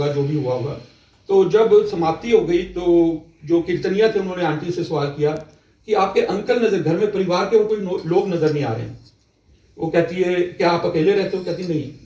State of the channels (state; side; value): identical; both; correlation 1.00